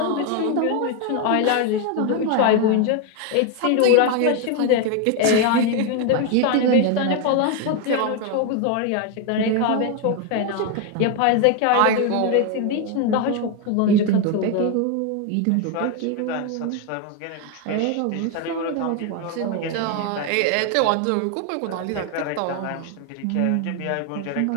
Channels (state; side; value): different; both; correlation 0.01